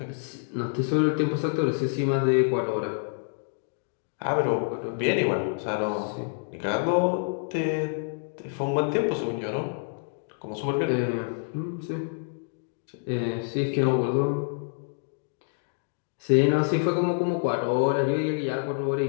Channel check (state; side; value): silent; right; digital silence